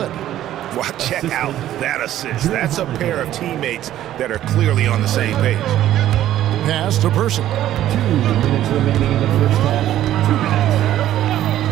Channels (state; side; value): quieter; left; 12.7 dB